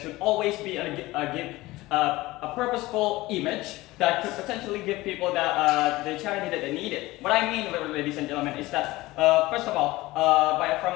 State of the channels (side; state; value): right; quieter; 19.2 dB